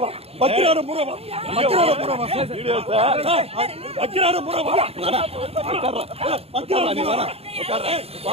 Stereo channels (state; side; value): late; left; 0.29 ms